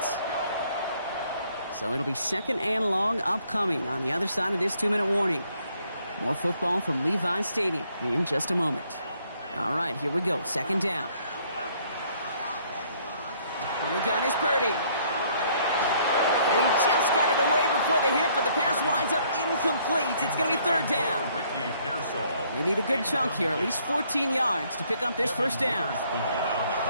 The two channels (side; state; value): both; inverted; correlation -0.65